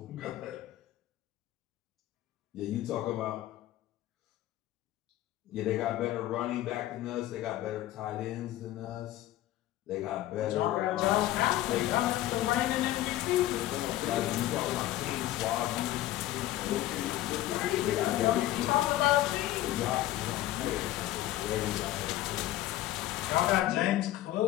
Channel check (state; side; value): quieter; right; 14.8 dB